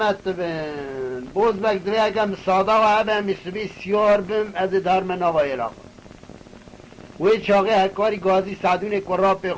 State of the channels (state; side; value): identical; both; correlation 1.00